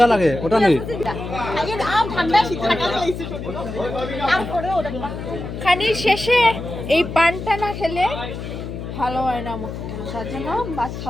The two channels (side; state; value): left; noise; hum, 8 dB below the sound